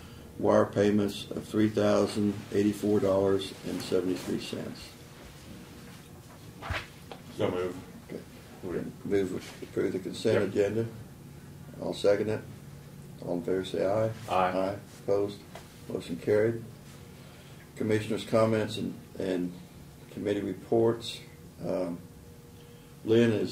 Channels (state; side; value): identical; both; correlation 1.00